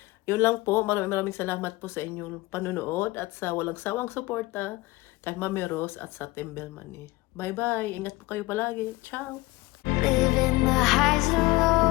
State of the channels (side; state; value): right; quieter; 20.8 dB